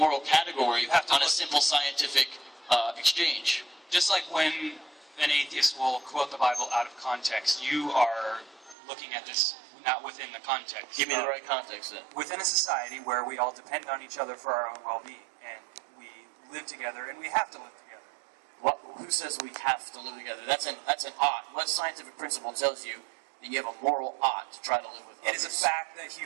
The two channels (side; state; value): left; drops out; at 8.8 s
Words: category on a simple scientific exchange? Just like when an atheist will quote the Bible out of context, you are looking at this not within the context. Give me the right context then. Within a society where we all depend on each other for our own well-being, and we live together, and we have to live together. Who says we have to live together? That's an ought. What scientific principle tells you that you have a moral ought to try to live with others? It is a fact that